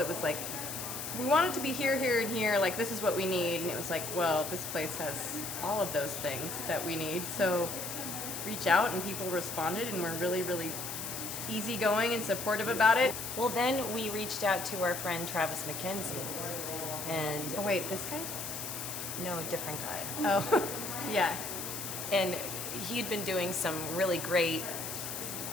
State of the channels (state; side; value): noise; left; hiss, 6 dB below the sound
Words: was like, we want it to be here, here, and here. Like, this is what we need. And it was like, well, this place has all of those things that we need. So reach out, and people responded, and we're really, really easygoing and supportive about it. Well, then we reached out to our friend Travis McKenzie, and Oh, wait, this guy? no, a different guy. Oh, yeah. And he'd been doing some really great